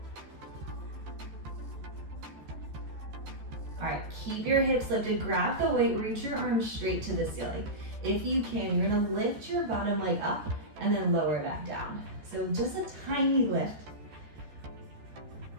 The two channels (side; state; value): left; late; 13 ms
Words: All right, keep your hips lifted, grab the weight, reach your arms straight to the ceiling. If you can, you're gonna lift your bottom leg up and then lower it back down. So just a tiny lift.